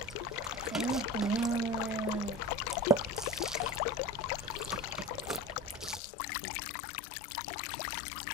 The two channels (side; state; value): right; drops out; at 6.0 s